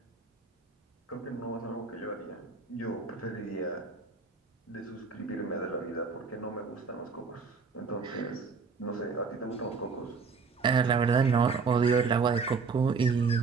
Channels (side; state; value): left; quieter; 5.0 dB